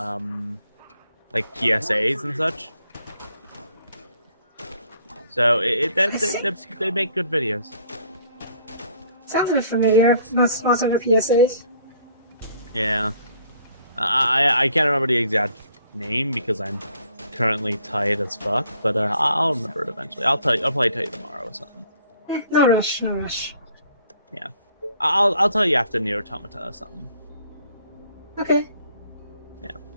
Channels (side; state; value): both; inverted; correlation -0.62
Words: like PSAs and such. So they make good videos. Sounds a bit familiar. Most of the PSAs. Yeah. I can't remember the exact name because I'm currently tired as fuck, but I'll remember it eventually. I'll probably tell you tomorrow or something. No rush, no rush. Yeah. I'll tell you after Nier Automata or something. Okay. Yeah.